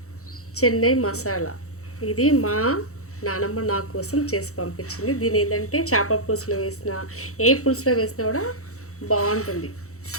చెన్నై మసాలా, ఇది మా నానమ్మ నా కోసం చేసి పంపించింది. దీని ఏంటంటే చేపల పులుసులో వేసినా ఏ పులుసులో వేసినా కూడా బాగుంటుంది.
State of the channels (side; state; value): right; late; 0.64 ms